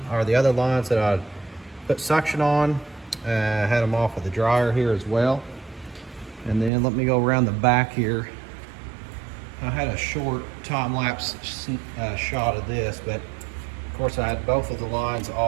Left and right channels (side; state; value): left; drops out; at 6.7 s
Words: the other lines that I put suction on. Had them off with the dryer here as well. And then let me go around the back here. I had a short time-lapse shot of this, but of course I had both of the lines